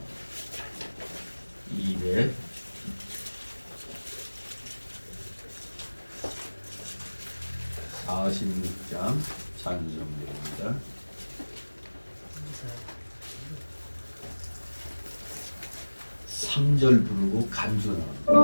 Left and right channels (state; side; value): inverted; both; correlation -1.00